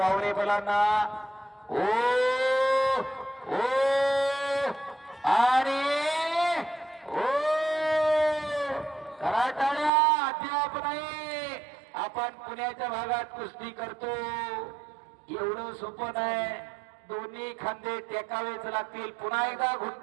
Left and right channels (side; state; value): left; drops out; at 9.9 s